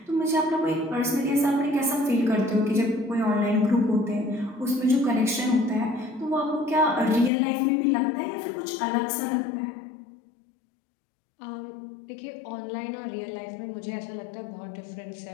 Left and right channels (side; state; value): right; drops out; at 7.3 s